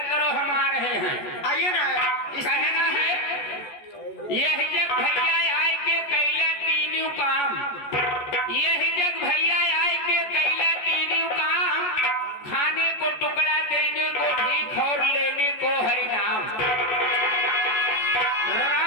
करो, हम आ रहे हैं। आइए ना। कहना है यही जग भैया आए के कैला तीनों काम, यही जग भैया आए के कैला तीनों काम, खाने को टुकड़ा देने को भीख और लेने को हरि नाम।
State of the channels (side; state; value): right; late; 14 ms